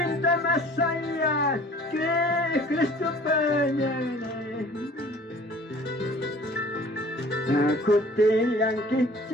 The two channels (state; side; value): normal; both; correlation 0.49